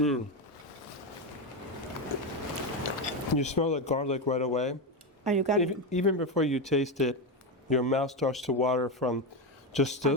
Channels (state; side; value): normal; both; correlation 0.12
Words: smell the garlic right away. And you got Even before you taste it, your mouth starts to water from just